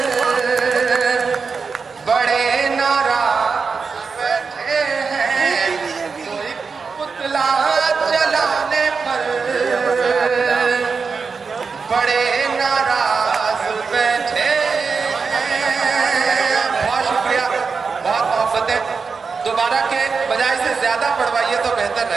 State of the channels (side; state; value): left; quieter; 5.1 dB